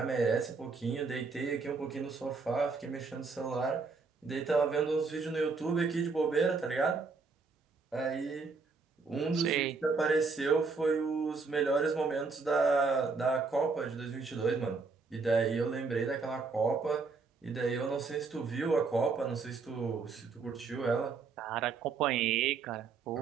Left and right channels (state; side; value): quieter; left; 4.5 dB